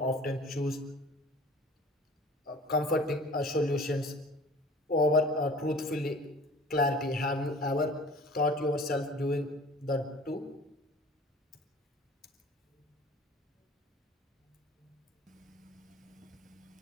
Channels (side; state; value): both; normal; correlation 0.45